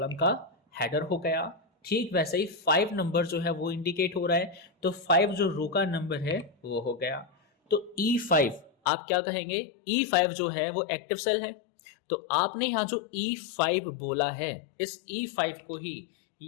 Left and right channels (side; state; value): right; drops out; at 8.7 s